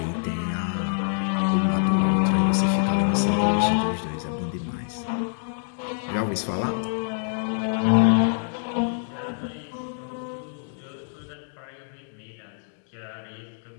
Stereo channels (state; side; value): silent; right; digital silence